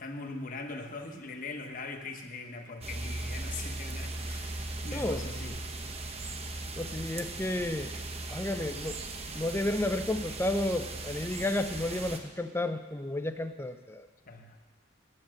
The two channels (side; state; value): both; normal; correlation 0.70